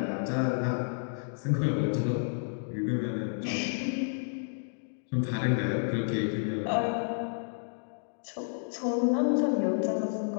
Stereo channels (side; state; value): right; silent; digital silence